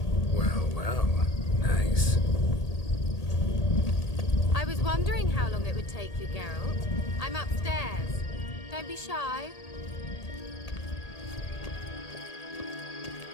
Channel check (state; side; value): late; right; 1.8 ms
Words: Well, nice. I was wondering how long it would take you, Geralt. I'm upstairs. Don't be shy.